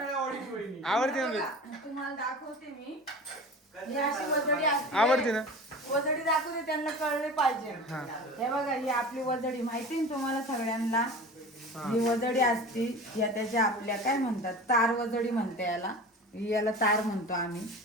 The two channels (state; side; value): normal; both; correlation 0.35